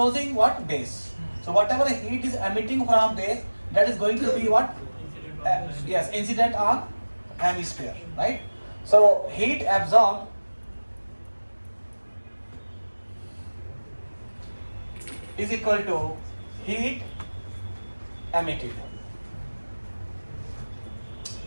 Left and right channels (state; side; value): inverted; both; correlation -1.00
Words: what? Base. So whatever heat is emitting from base, that is going to be what? Yes, incident on hemisphere, right? So heat absorbed is equal to heat emitted.